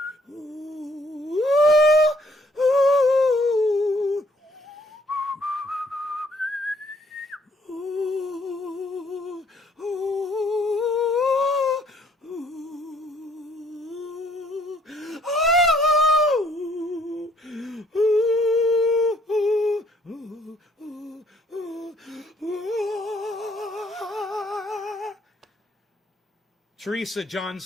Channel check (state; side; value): normal; both; correlation 0.63